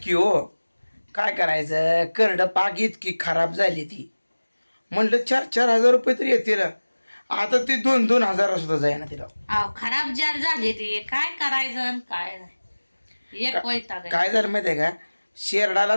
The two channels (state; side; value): inverted; both; correlation -1.00